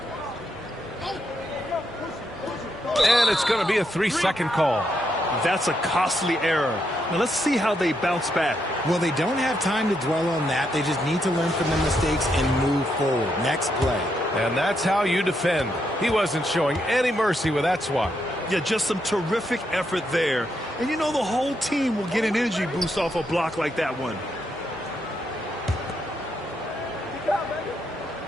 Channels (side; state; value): both; normal; correlation 0.79